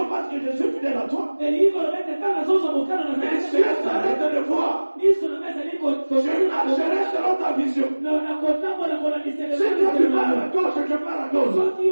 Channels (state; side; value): inverted; both; correlation -1.00